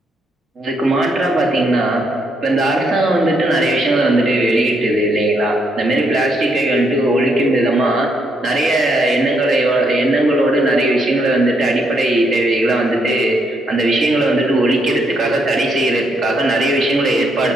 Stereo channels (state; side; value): normal; both; correlation 0.75